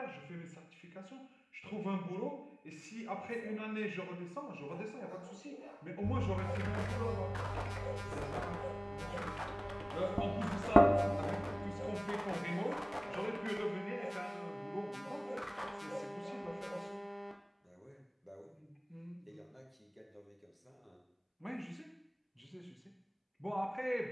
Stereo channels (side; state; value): both; identical; correlation 1.00